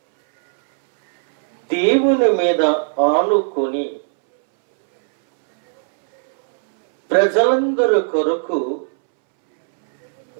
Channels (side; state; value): left; silent; 68 dB below the other